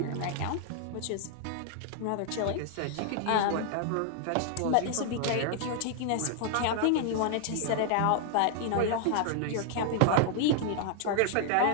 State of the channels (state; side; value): different; both; correlation -0.01